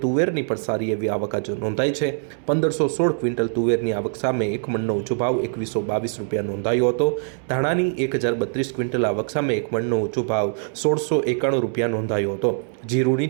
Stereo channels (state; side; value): silent; left; digital silence